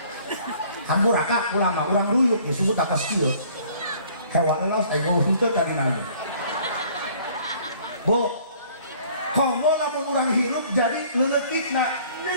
Hampuraka ulama urang ruyuk disebut atas kieu. Hewan elos aing mau henteu dari nanya. Bu, komo lamun urang hirup jadi leuletikna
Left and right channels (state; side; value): inverted; both; correlation -0.55